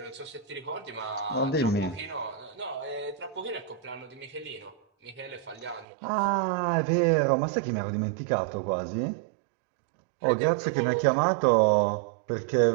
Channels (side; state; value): left; drops out; at 5.9 s